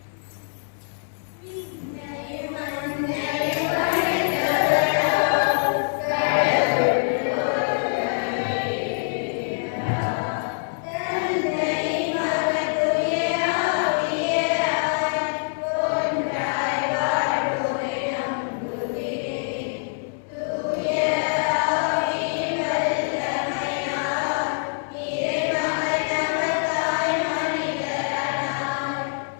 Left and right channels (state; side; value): silent; right; 62 dB below the other